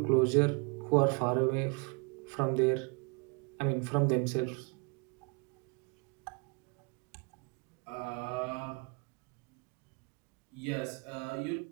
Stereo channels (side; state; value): left; quieter; 33.3 dB